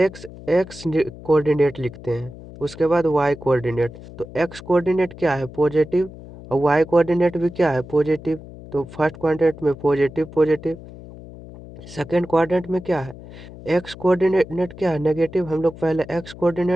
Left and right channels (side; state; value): left; noise; hum, 16 dB below the sound